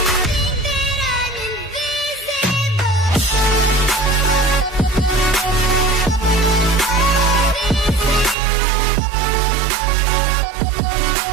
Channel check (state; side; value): drops out; left; at 8.3 s